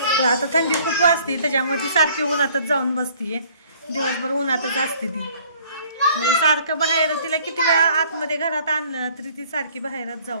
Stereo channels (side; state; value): both; inverted; correlation -0.57